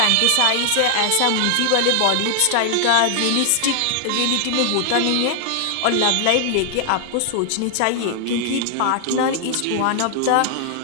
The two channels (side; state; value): both; different; correlation 0.00